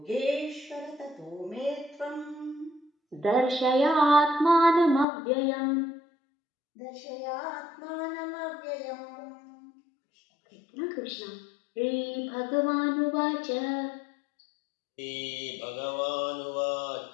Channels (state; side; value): drops out; right; at 5.1 s